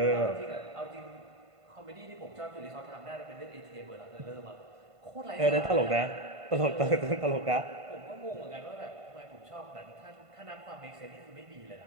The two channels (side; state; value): left; late; 1.5 ms